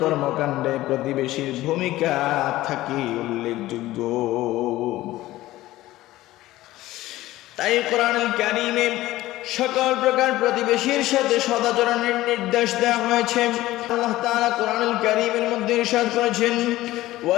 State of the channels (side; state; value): right; quieter; 16.4 dB